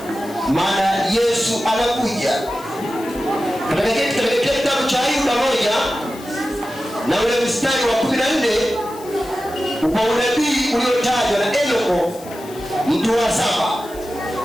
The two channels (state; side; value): noise; left; hiss, 19 dB below the sound